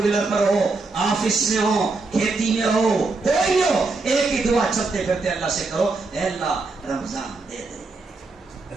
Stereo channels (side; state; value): left; quieter; 3.7 dB